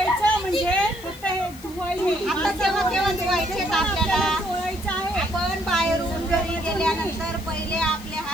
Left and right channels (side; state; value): left; noise; hiss, 21 dB below the sound